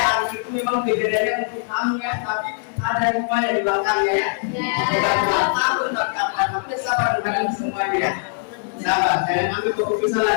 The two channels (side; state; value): right; silent; digital silence